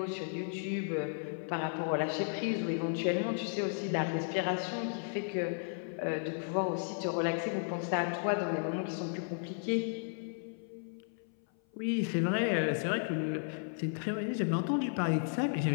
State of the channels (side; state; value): right; silent; 55 dB below the other